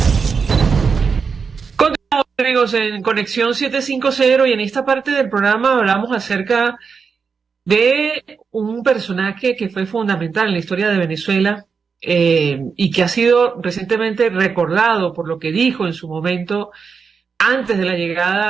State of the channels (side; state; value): left; quieter; 5.6 dB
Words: Continuamos, amigos, en Conexión 750, y en esta parte del programa hablamos acerca de un personaje que fue fundamental en la historia de Venezuela y que ha sido recientemente recordado por lo que dijo en su momento antes de la